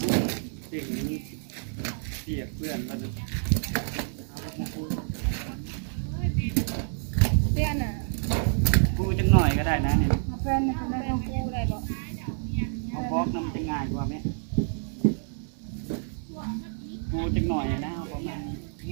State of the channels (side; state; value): left; silent; digital silence